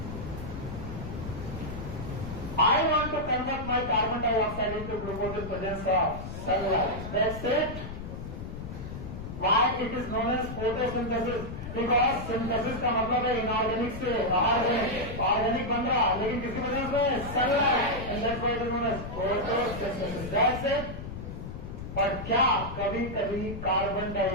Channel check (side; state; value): left; noise; rumble, 8 dB below the sound